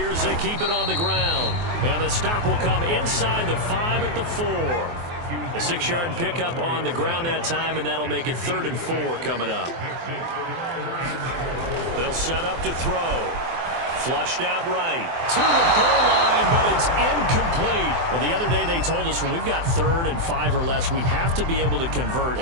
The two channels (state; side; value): late; left; 24 ms